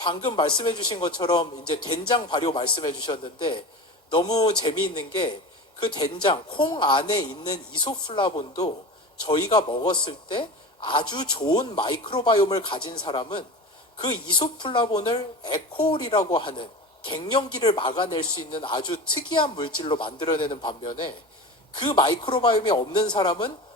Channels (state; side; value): normal; both; correlation 0.30